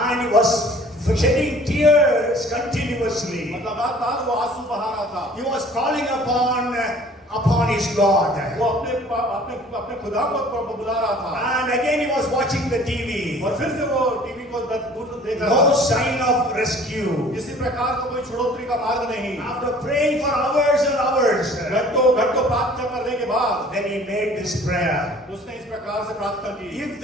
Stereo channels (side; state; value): both; normal; correlation 0.51